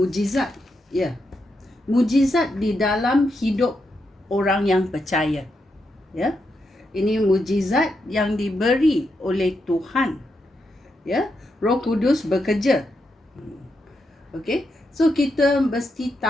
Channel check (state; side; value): normal; both; correlation 0.83